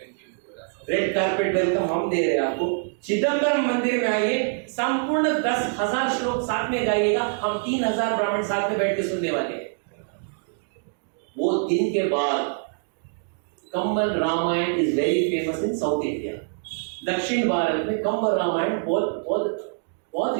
रेड कार्पेट वेलकम हम दे रहे हैं आपको। चिदंबरम मंदिर में आइए, संपूर्ण 10,000 श्लोक साथ में गाइएगा। हम 3,000 ब्राह्मण साथ में बैठ के सुनने वाले हैं। वो दिन के बाद कंबल Ramayana is very famous in south India. दक्षिण भारत में कंबल रामायण बहुत बहुत बहुत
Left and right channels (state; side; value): silent; left; digital silence